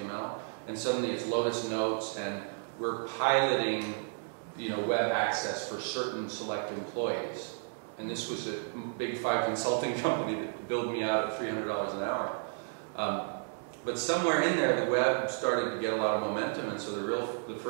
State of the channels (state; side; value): silent; left; 56 dB below the other